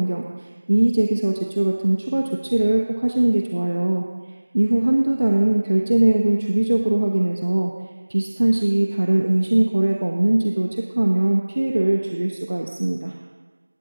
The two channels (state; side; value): inverted; both; correlation -1.00